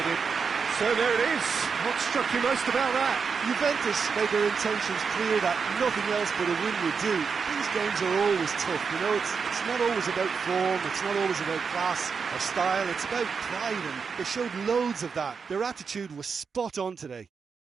So there it is. What struck you most about that? Juventus made their intentions clear that nothing else but a win would do. These games are always tough, you know, it's not always about form, it's not always about class or style, it's about pride, and they showed loads of that. Their attitude was spot on today.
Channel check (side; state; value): left; quieter; 5.7 dB